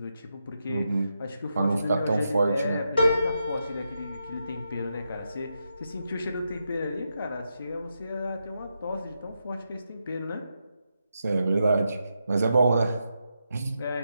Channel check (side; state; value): both; inverted; correlation -0.84